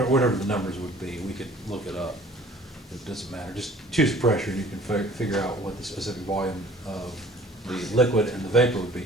the numbers would be, we could look it up. It doesn't matter. Just choose pressure and you can figure out what the specific volume of the liquid and the vapor would be.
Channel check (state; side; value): normal; both; correlation 0.50